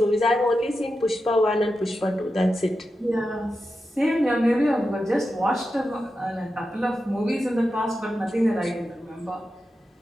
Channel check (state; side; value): normal; both; correlation 0.90